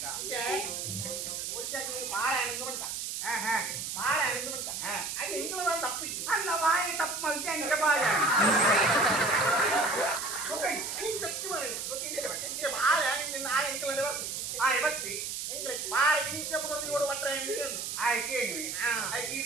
ಬಾಳೆ ಹಣ್ಣು ಬಂತ ಬಾಳೆ ಹಣ್ಣು ಬಂತ ಅದು ಹೆಂಗದ ತಪ್ಪಿ ಅಲ್ಲ ಬಾಯಿ ತಪ್ಪು ಮಲ್ತಿ ಹಂಗೆ ಬಾಳೆ ಬಾಳೆ ಹಣ್ಣಿನ ಆ ಹೆಂಗಲೇ ಬರ್ತು ಬತ್ತಿ ಹೆಂಗ್ರೆ ಬಾಳೆ ಹಿಂಗೆ ಮುಗಿದು ಓಡು ಮಟ್ರೆ ಹೆಂಗೆ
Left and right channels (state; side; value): noise; right; hiss, 4 dB below the sound